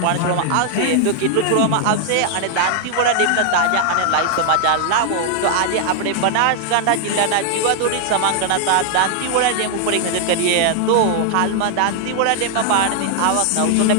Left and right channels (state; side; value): different; both; correlation 0.00